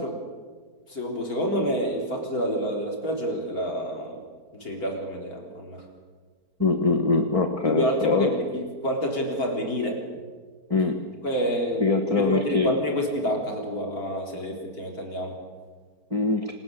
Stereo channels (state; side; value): late; left; 4.4 ms